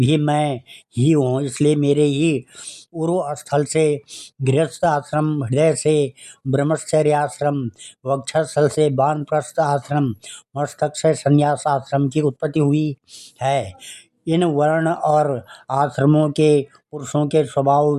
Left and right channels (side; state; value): both; identical; correlation 1.00